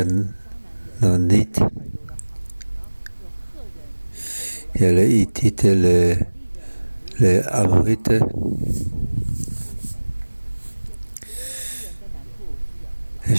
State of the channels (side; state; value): both; inverted; correlation -1.00